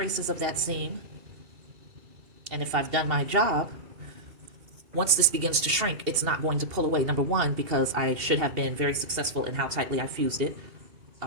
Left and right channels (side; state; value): left; late; 2.7 ms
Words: of that seam. And if I've done my job, once this begins to shrink, it's not going to pull away. Number one, because I should have been very successful in how tightly I fused it,